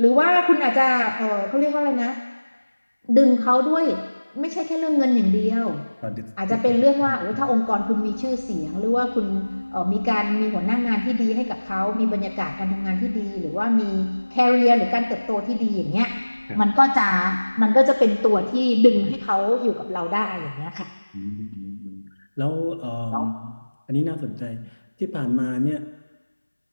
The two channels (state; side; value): inverted; both; correlation -1.00